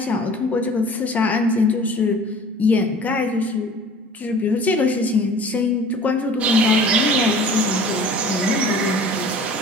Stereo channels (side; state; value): both; normal; correlation 0.46